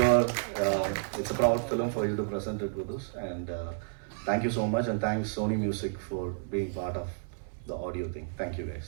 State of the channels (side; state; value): left; silent; 57 dB below the other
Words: it's a proud film for you to present it with us. And thank you so much, and thanks Sony Music for being part of the audio thing. Thank you guys.